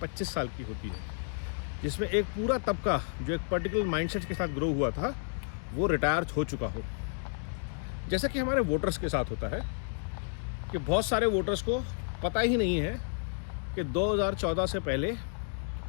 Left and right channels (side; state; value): right; silent; digital silence